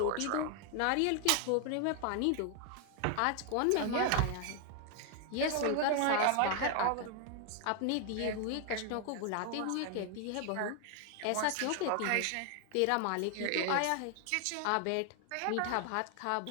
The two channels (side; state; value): both; different; correlation 0.00